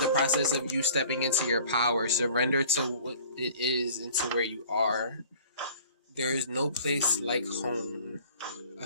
the process of you stepping into your power. Surrender to what it is and to where you are. There is no place like home. I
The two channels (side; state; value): both; inverted; correlation -0.49